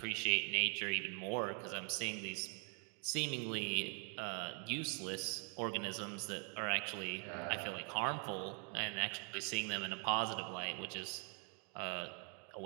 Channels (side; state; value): left; quieter; 35.7 dB